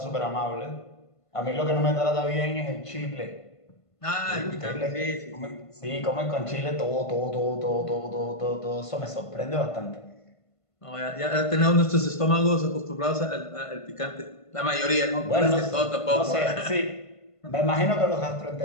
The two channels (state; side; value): late; right; 1.5 ms